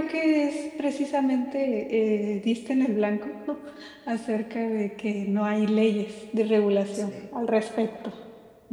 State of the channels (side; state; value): both; identical; correlation 1.00